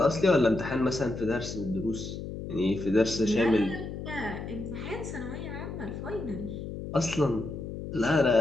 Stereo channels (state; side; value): noise; left; hum, 8 dB below the sound